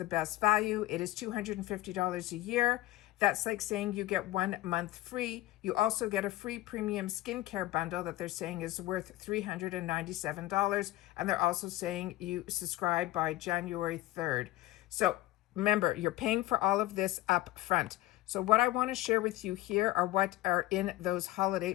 best value. It is $250 a year. That's like saying you get 1 month free. You also get a free premium skincare bundle that they're saying is worth $397. And they're also saying you subscribe by January 3rd. So remember, you're paying for all of this up front. So what I want to share with you here are what are in those holiday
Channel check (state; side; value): quieter; right; 16.5 dB